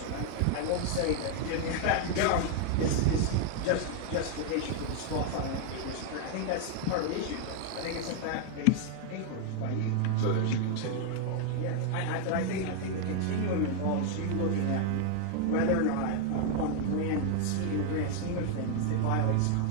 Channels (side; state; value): both; different; correlation 0.00